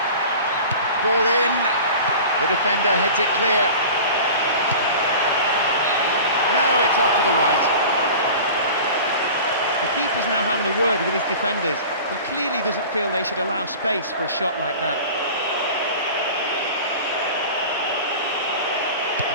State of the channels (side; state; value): both; inverted; correlation -0.38